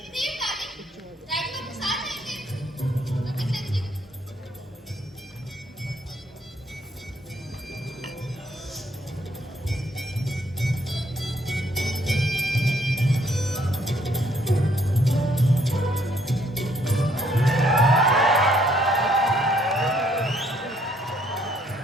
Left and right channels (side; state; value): both; normal; correlation 0.67